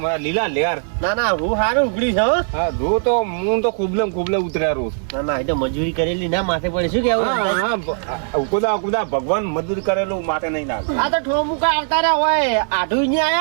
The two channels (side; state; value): left; silent; 66 dB below the other